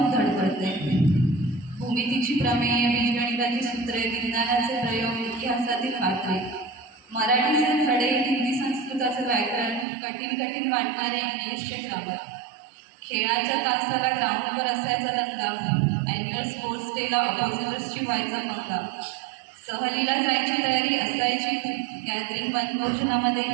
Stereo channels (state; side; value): drops out; left; at 9.9 s